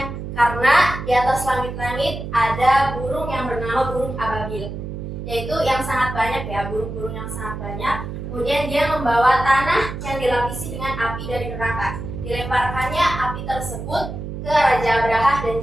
karena di atas langit-langit ada burung yang bernama burung ababil, yaitu yang sangat banyak ya, burung-burung yang sangat banyak. Kemudian dia membawa tanah yang dilapisi dengan api dari neraka. Dilemparkannya api tersebut ke Raja Abraha dan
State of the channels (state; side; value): noise; right; hum, 7 dB below the sound